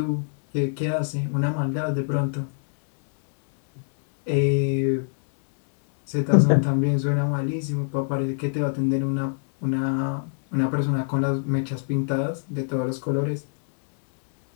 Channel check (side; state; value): right; silent; digital silence